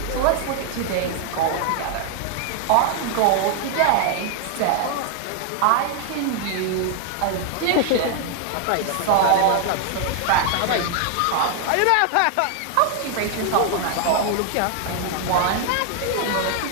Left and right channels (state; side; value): different; both; correlation 0.00